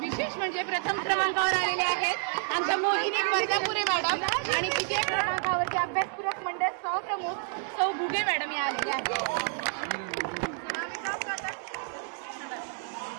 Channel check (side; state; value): left; silent; 58 dB below the other